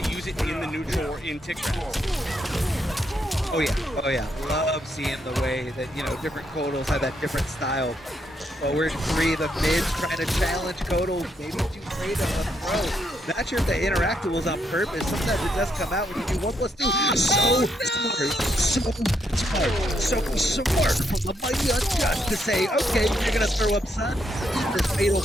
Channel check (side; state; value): both; normal; correlation 0.77